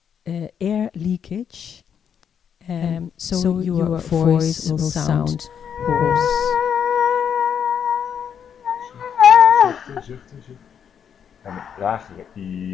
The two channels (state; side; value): quieter; right; 8.0 dB